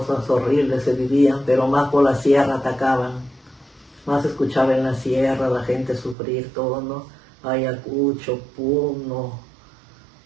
horribles se vivían, pero más por la sierra atacaban, más escuchaba en la sierra la gente sufrir todo, ¿no? Ayacucho, Puno,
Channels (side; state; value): left; drops out; at 6.2 s